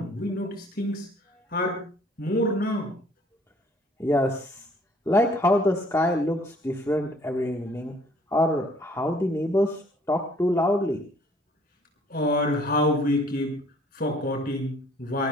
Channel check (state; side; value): normal; both; correlation 0.59